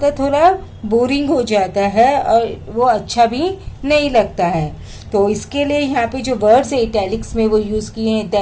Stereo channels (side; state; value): both; identical; correlation 1.00